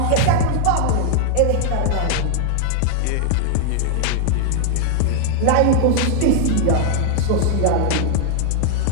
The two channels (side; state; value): both; different; correlation 0.00